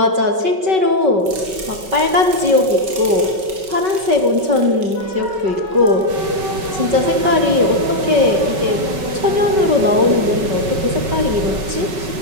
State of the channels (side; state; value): left; late; 5.3 ms